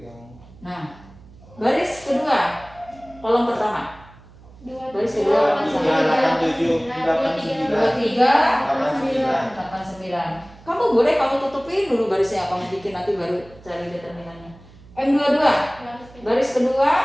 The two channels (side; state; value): right; noise; hum, 23 dB below the sound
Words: yang Nah, baris kedua, kolom pertama. Baris kedua, 3, 8, 7, 8, 9. 23, 89. Kamu boleh kamu tutupin dulu barisnya, kamu bikin nanti baru cari determinannya. M22, baris kedua,